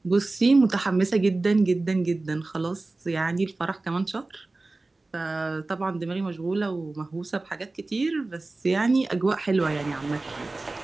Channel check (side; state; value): left; quieter; 3.2 dB